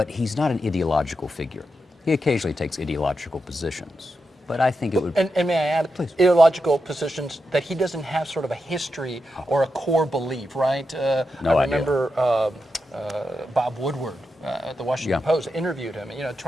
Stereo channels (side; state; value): both; normal; correlation 0.87